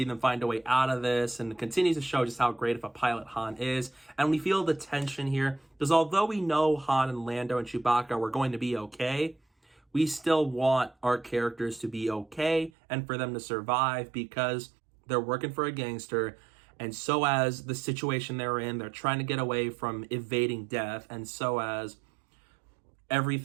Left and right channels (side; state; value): left; drops out; at 12.7 s